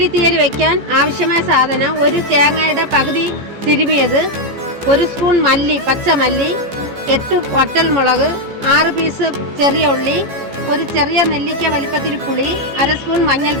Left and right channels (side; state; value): left; late; 15 ms